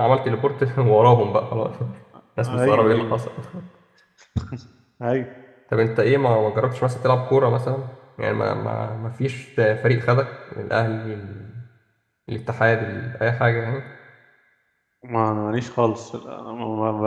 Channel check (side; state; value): both; identical; correlation 1.00